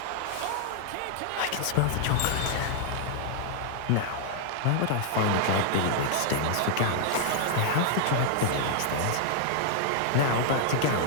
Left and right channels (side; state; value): both; different; correlation -0.01